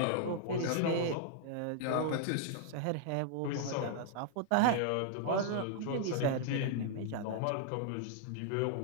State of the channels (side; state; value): both; different; correlation -0.01